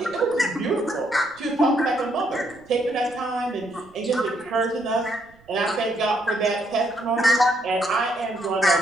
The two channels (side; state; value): right; noise; rumble, 29 dB below the sound